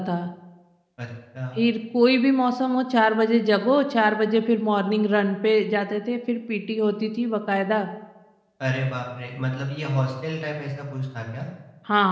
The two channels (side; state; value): both; identical; correlation 1.00